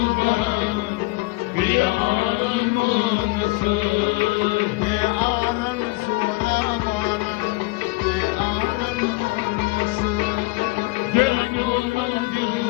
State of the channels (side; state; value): right; quieter; 23.8 dB